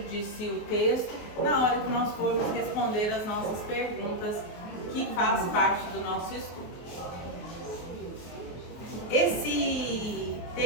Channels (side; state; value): right; late; 23 ms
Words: de si o texto na hora que nós formos responder as nossas perguntas, que faz parte do nosso estudo. Esse